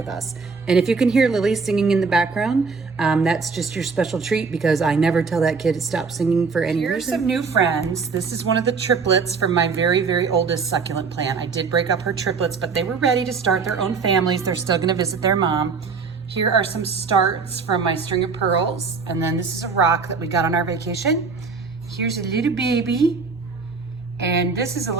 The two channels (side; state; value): left; quieter; 5.0 dB